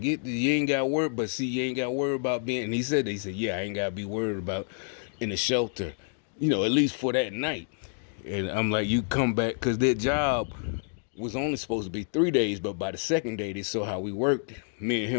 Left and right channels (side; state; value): right; silent; digital silence